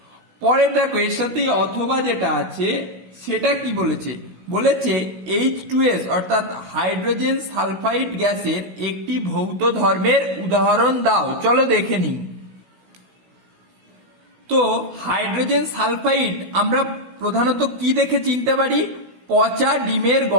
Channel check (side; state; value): left; late; 16 ms